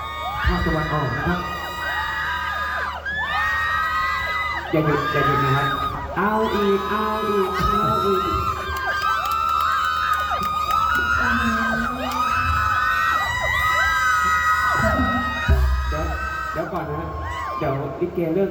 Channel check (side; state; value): both; identical; correlation 1.00